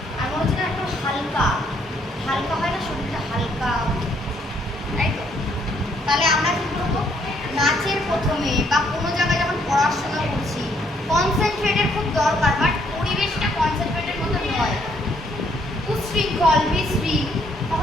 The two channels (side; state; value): both; normal; correlation 0.69